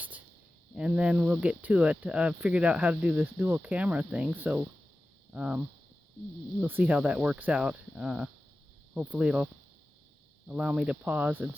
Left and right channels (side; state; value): both; normal; correlation 0.95